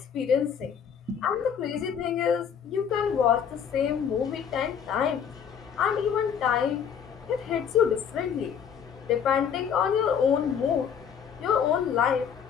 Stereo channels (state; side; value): quieter; right; 7.7 dB